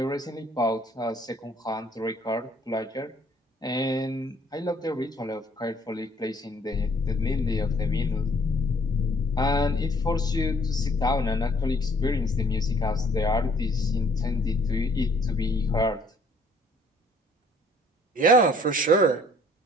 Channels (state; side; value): normal; both; correlation 0.60